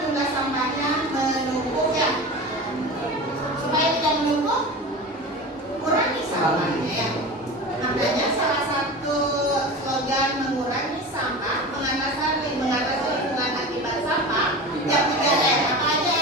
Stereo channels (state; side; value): normal; both; correlation 0.31